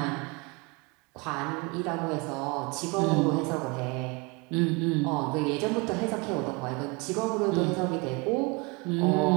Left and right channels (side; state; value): left; quieter; 28.6 dB